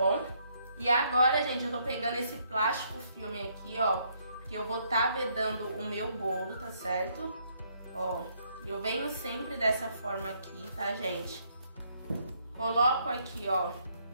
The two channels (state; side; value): inverted; both; correlation -0.71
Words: E agora, gente, eu tô pegando esse plástico filme aqui, ó, que eu vou estar vedando o meu bolo, tá certo? Ó, eu venho sempre dessa forma aqui, tá, gente? Coloco aqui, ó,